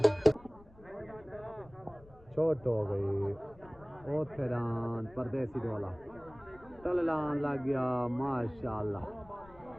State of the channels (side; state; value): left; noise; rumble, 24 dB below the sound